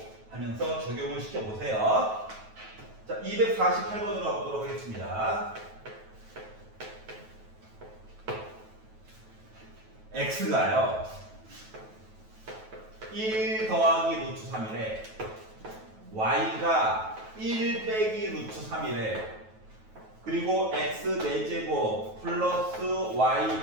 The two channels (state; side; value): late; left; 9.2 ms